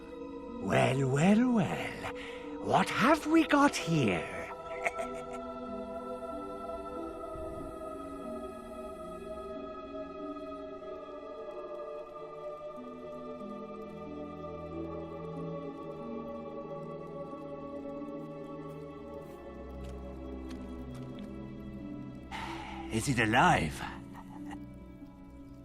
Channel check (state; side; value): identical; both; correlation 1.00